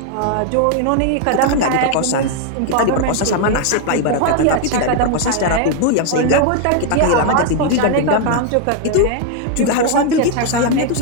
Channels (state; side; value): different; both; correlation 0.00